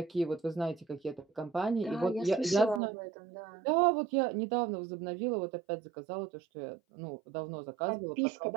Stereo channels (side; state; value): left; drops out; at 2.8 s